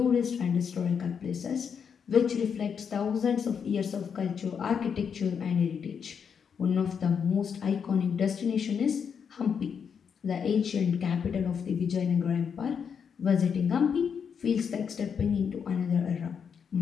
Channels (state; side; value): quieter; right; 6.9 dB